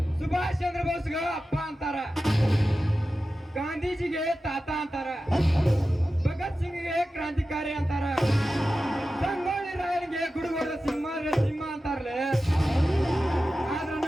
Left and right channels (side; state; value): both; normal; correlation 0.93